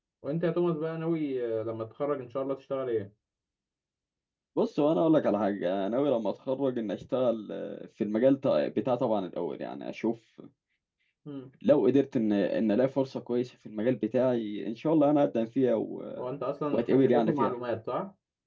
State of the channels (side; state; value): both; identical; correlation 1.00